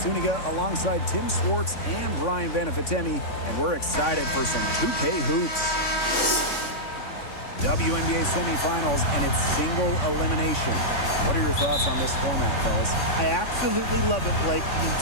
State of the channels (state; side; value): late; right; 3.6 ms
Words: alongside Tim Swartz and Brian Vanafitemi, and we're excited for some 2K hoops. WNBA semifinals and its single elimination. What are your thoughts on this format, fellas? I absolutely love it, Blake. The